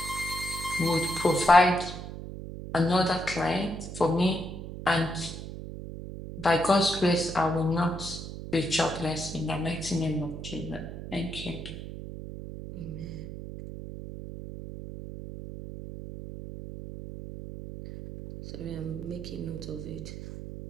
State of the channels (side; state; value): right; noise; hum, 9 dB below the sound